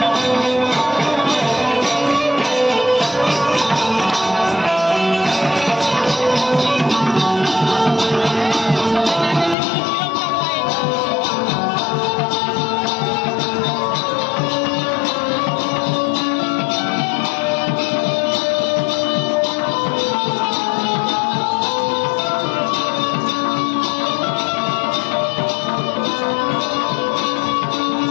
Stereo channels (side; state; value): right; drops out; at 9.6 s